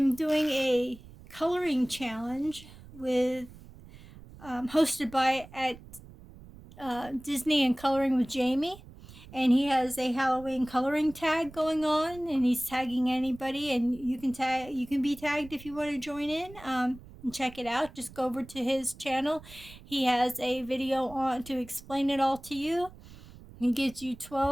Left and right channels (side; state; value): right; noise; rumble, 19 dB below the sound